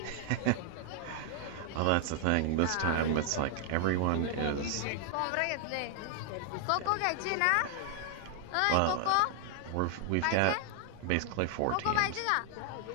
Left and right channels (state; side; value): different; both; correlation 0.00